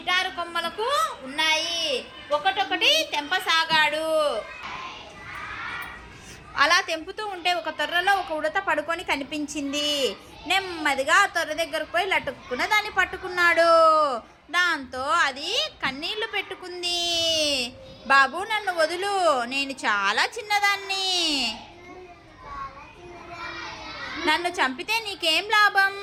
కొమ్మలకు ఉన్నాయి. ఒకటొకటి తెంపసాగాడు. అలా తెంపుతూ ఉంటే ఒక తొర్రలో ఒక ఉడత పడుకొని కనిపించింది. నెమ్మదిగా ఆ తొర్ర దగ్గరకు పోయి లటుక్కున దాన్ని పట్టుకున్నాడు. దాంతో అది కన్నీళ్లు పెట్టుకుంది. బాబు, నన్ను వదులు, నేను చాలా చిన్నదాన్ని. నన్ను చంపితే నీకేం లాభం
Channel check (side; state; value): both; identical; correlation 1.00